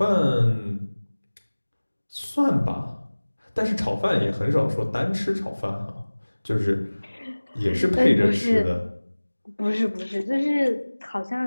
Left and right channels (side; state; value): both; inverted; correlation -1.00